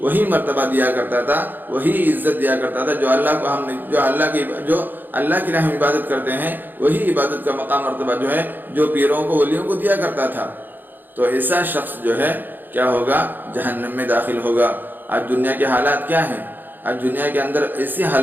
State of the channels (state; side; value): late; left; 0.090 ms